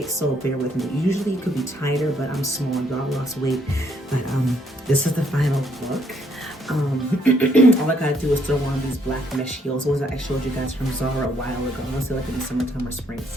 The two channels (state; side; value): normal; both; correlation 0.70